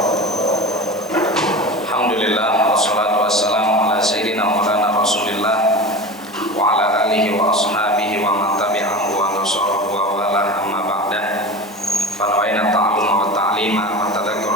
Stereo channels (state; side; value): normal; both; correlation 0.30